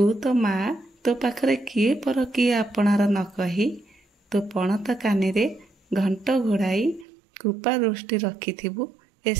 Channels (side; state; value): left; drops out; at 7.1 s